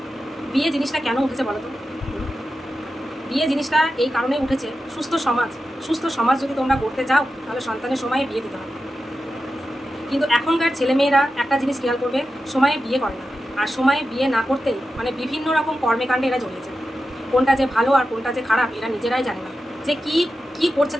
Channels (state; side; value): normal; both; correlation 0.91